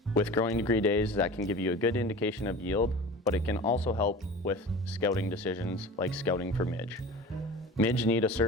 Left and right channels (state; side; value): normal; both; correlation 0.36